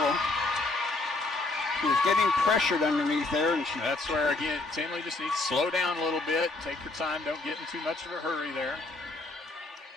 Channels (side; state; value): right; quieter; 3.2 dB